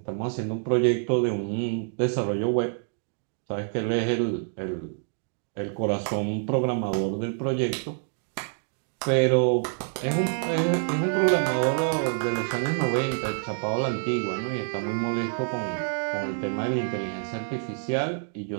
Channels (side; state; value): left; silent; 56 dB below the other